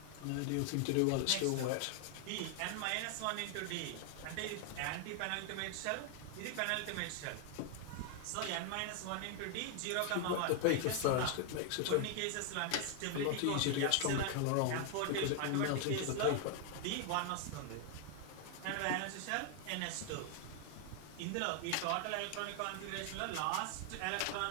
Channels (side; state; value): both; different; correlation 0.00